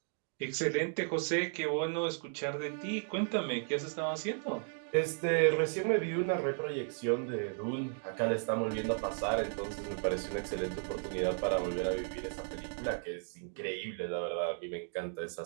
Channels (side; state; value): left; silent; 55 dB below the other